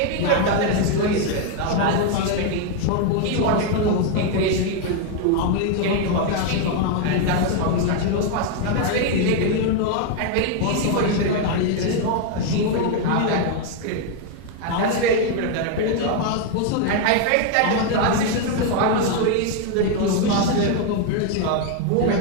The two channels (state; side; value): different; both; correlation 0.01